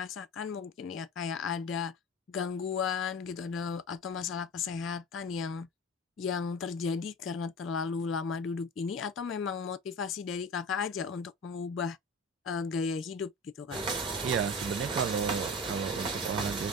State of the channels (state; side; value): normal; both; correlation 0.34